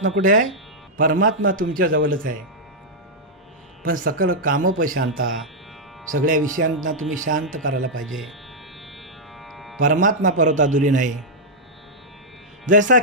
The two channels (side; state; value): both; normal; correlation -0.06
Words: कुठे आहे? परमात्मा तुमच्या जवळच आहे. पण सकळ कामोपशांता. सगळ्या विषयांना तुम्ही शांत करायला पाहिजे. परमात्मा परत दुरी नाही. जसा